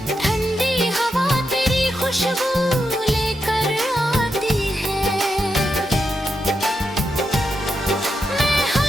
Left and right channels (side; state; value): both; normal; correlation 0.85